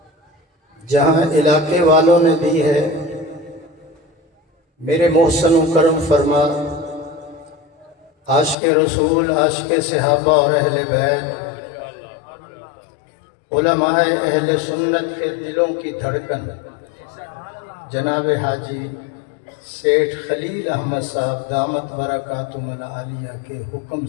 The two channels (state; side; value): drops out; right; at 8.6 s